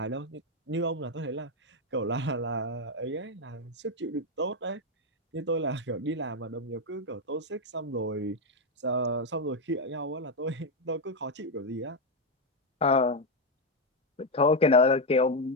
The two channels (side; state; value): both; normal; correlation 0.05